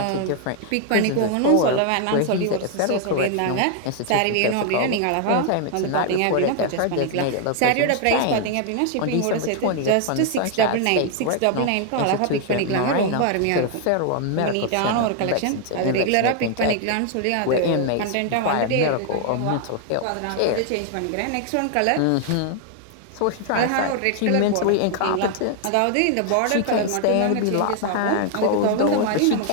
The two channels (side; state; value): both; different; correlation 0.00